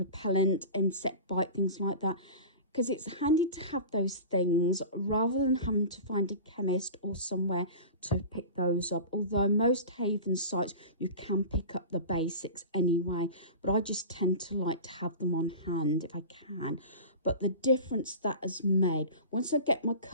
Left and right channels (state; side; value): inverted; both; correlation -0.34